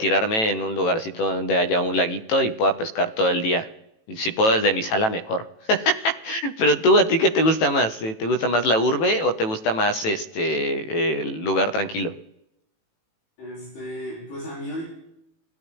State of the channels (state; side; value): late; right; 18 ms